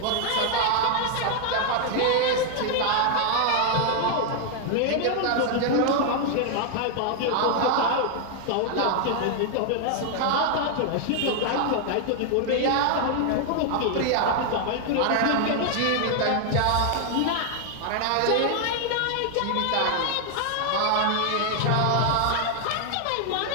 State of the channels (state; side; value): different; both; correlation 0.00